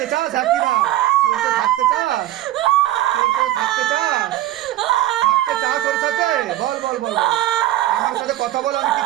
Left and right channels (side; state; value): left; quieter; 14.5 dB